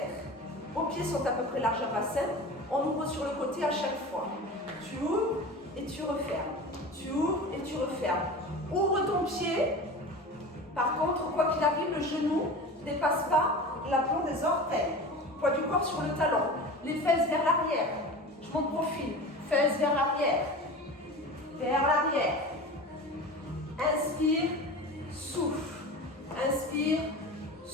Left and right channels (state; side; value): normal; both; correlation 0.33